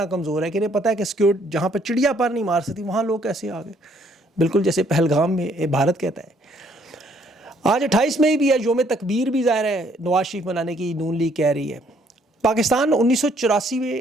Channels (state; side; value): normal; both; correlation 0.66